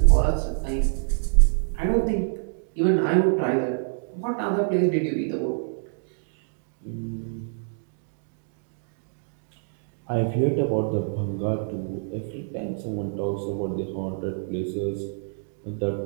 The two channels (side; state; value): left; silent; digital silence